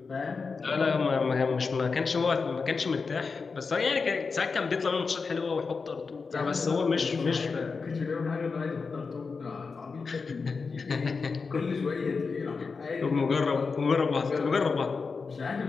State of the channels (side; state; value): right; quieter; 4.8 dB